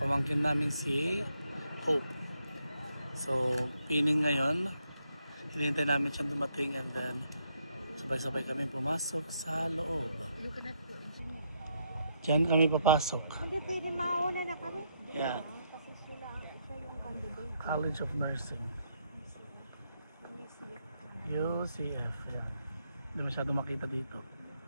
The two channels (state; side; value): inverted; both; correlation -0.76